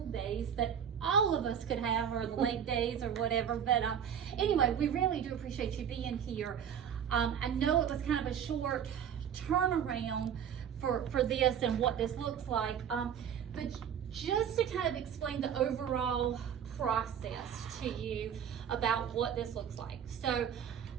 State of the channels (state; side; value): quieter; left; 8.5 dB